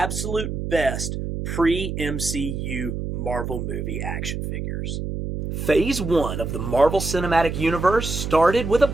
best pre-MCU Marvel movie action figures. Phase 1 of the Marvel Cinematic Universe started with a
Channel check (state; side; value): noise; right; hum, 4 dB below the sound